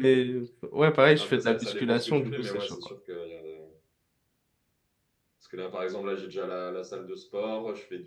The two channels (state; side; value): identical; both; correlation 1.00